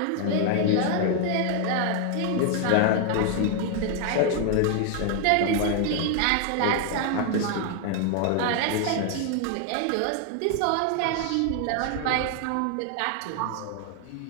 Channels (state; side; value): different; both; correlation 0.00